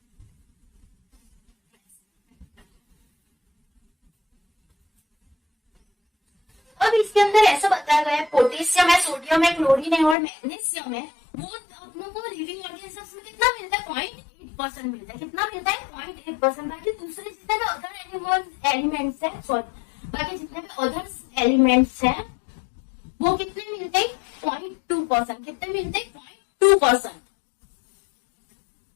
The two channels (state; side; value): drops out; right; at 10.2 s